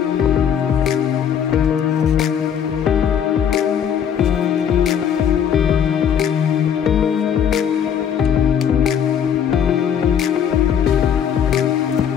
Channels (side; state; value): right; quieter; 8.4 dB